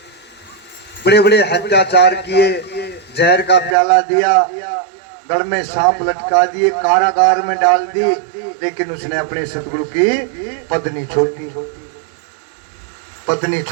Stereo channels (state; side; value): drops out; left; at 3.8 s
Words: बड़े बड़े अत्याचार किए, जहर का प्याला दिया, गढ़ में सांप लटका दिए, कारागार में डाल दी, लेकिन उसने अपने सतगुरु की पत्नी